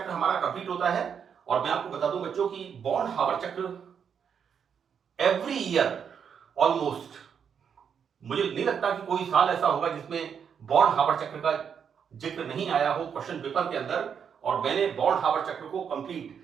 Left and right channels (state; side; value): quieter; left; 7.3 dB